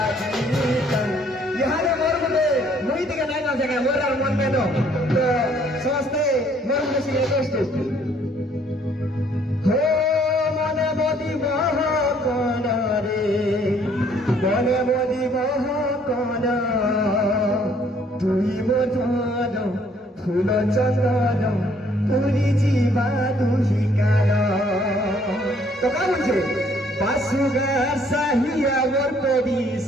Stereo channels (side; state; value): both; normal; correlation 0.63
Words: জীবিতান ইহারে মোর মনে মুই দিকে নাই না জায়গা মোর আর মন মেনো তো সমস্তে মোর মনে ছিল কষ্ট হো মনে বদি মহ কোন রে মনে বদি মহ কোন তুই মধুর ফুল চন্দন পুরি জীবা দুহিকার তো কা বলছে বাসুগা সাহিয়া মোর